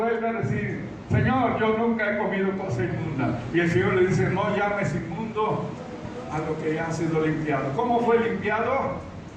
a decir: Señor, yo nunca he comido cosa inmunda. Y el Señor le dice: no llames inmundo a lo que ya ha sido limpiado. ¿Cómo fue limpiado?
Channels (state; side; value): identical; both; correlation 1.00